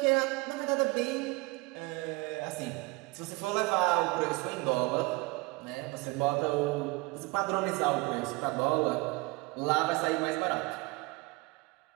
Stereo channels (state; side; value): quieter; left; 24.6 dB